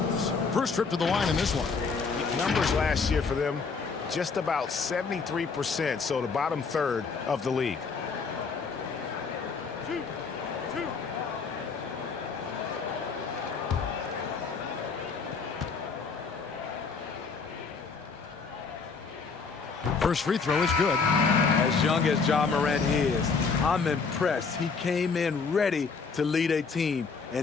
First trip to the line in this one. Numbers last year for them, just about 73%, so the bottom third of the league. First free throw is good. As young as John Morant is, I'm impressed. He came in ready to lead a team,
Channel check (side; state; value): right; quieter; 5.0 dB